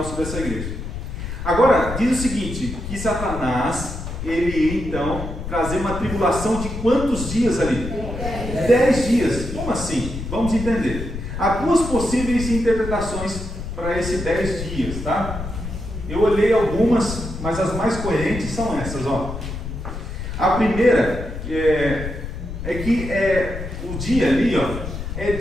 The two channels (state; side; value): noise; left; rumble, 7 dB below the sound